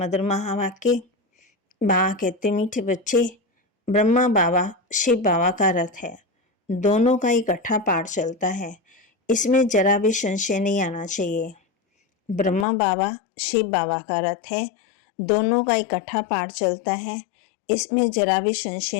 महावाक्य। बाबा कहते, मीठे बच्चे, ब्रह्मा बाबा शिव बाबा का रथ है। दोनों का इकट्ठा पाठ चलता है, इसमें जरा भी संशय नहीं आना चाहिए। ब्रह्मा बाबा शिव बाबा का रथ है, दोनों का इकट्ठा पाठ चलता है, इसमें जरा भी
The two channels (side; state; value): right; drops out; at 12.7 s